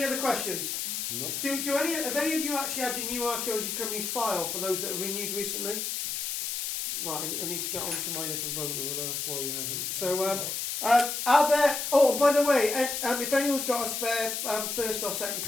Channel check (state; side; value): noise; left; hiss, 3 dB below the sound